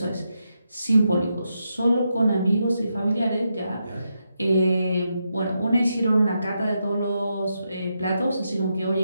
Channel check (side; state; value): both; inverted; correlation -0.84